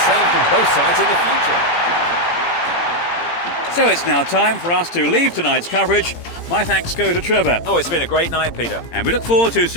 from both sides in the future. So it's now time for us to leave tonight's coverage. My thanks go to Trevor. Oh, it's been a great night, Peter. And we look forward to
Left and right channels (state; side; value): late; right; 17 ms